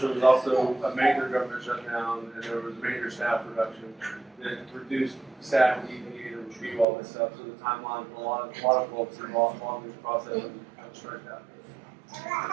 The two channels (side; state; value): left; drops out; at 6.9 s